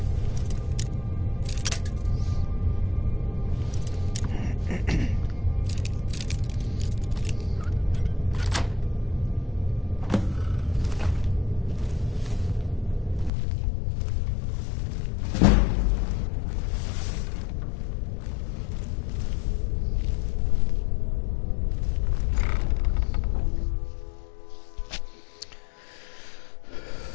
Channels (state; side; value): drops out; right; at 13.3 s